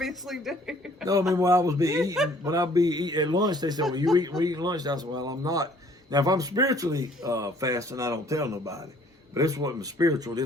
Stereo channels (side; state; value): both; normal; correlation 0.58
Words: do. No, I mean when I was when I'd be eating at lunch, they said, "Well, we eating lunch." I said, "Well, I'm not." Now, if I'm spiritually fasting, I don't tell nobody. But this wasn't spiritual.